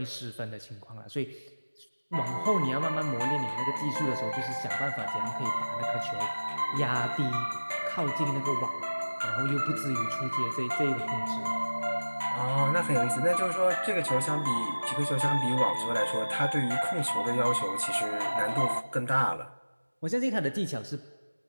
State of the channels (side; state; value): both; inverted; correlation -1.00